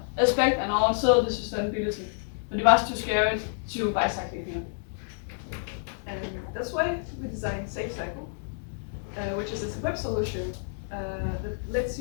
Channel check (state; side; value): silent; right; 59 dB below the other